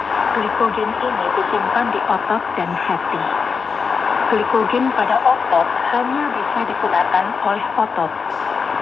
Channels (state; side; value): quieter; right; 5.4 dB